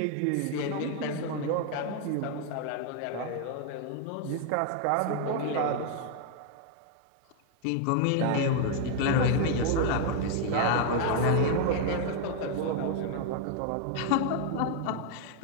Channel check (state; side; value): different; both; correlation 0.00